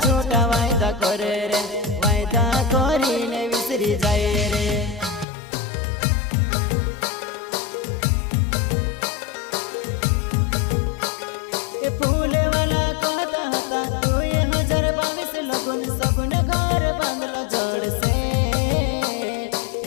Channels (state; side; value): drops out; right; at 5.2 s